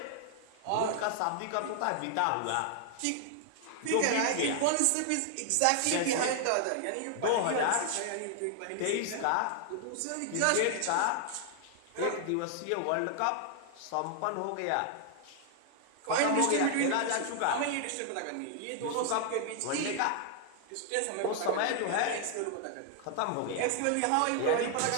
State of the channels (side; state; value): both; different; correlation 0.00